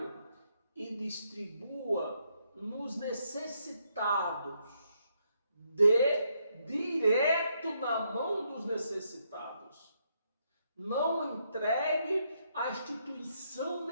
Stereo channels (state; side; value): inverted; both; correlation -0.76